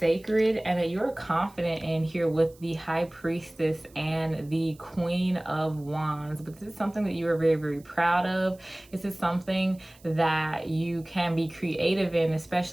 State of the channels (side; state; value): right; noise; hiss, 27 dB below the sound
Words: and that you're confident in here with the High Priestess and the Queen of Wands. But this is something that you are very, very proud of. This is something that you can be creative in,